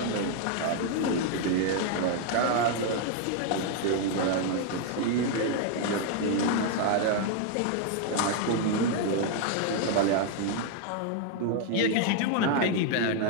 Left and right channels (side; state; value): both; different; correlation 0.00